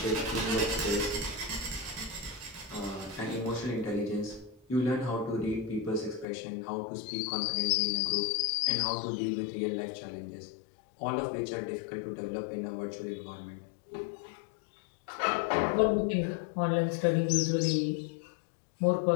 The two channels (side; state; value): right; drops out; at 6.2 s